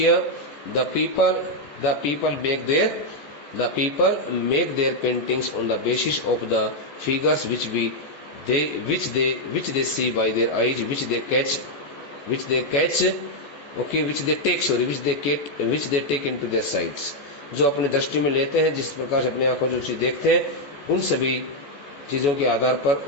the people make their paintings on the basis of the figures which they see by their eyes, which they catch which they catch, okay, which they take into their sights. जो अपने दृष्टि में लेते हैं, जिस प्रकार से अपनी आंखों से चीज देखते हैं, उन सभी चीजों के आधार पर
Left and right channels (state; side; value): late; right; 14 ms